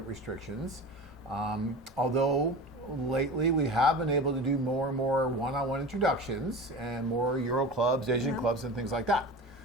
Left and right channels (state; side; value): normal; both; correlation 0.32